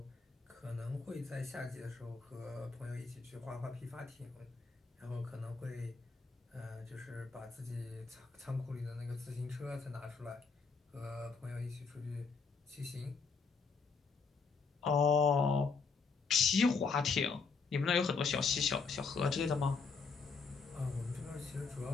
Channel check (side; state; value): right; quieter; 4.9 dB